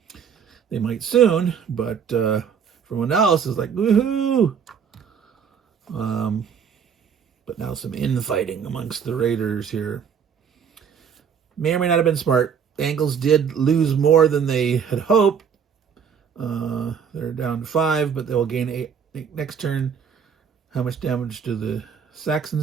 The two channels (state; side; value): quieter; left; 7.2 dB